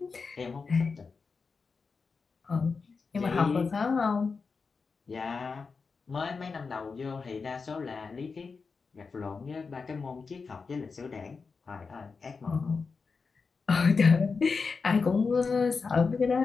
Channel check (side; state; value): right; quieter; 4.8 dB